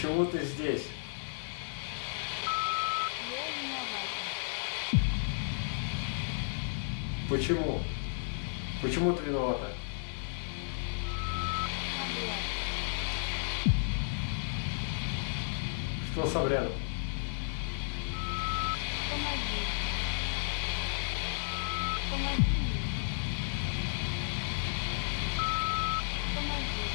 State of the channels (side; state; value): right; silent; 56 dB below the other